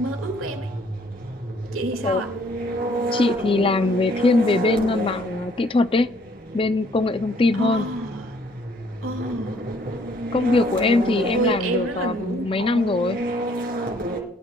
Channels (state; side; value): normal; both; correlation 0.63